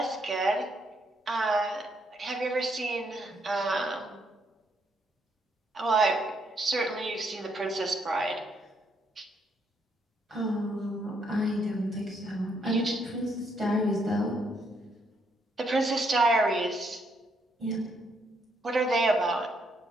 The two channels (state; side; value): normal; both; correlation 0.73